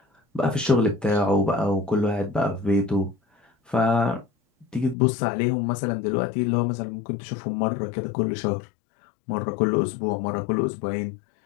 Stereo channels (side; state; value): right; drops out; at 5.0 s